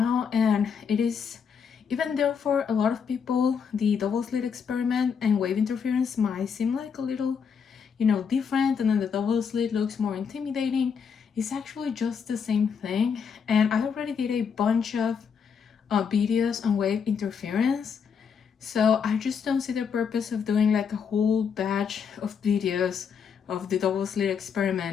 and it is, even though for a lot of people the double slit experiment and wave interference might seem like a little, different, and then the double slit looks more intimidating, it's actually just the same thing. And I already did a bunch of videos on wave interference, so I just don't see the purpose of doing like a whole batch of videos of the double slit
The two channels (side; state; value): right; quieter; 6.6 dB